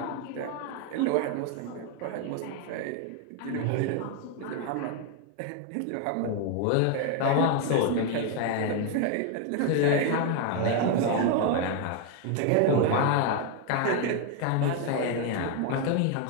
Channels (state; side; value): different; both; correlation 0.01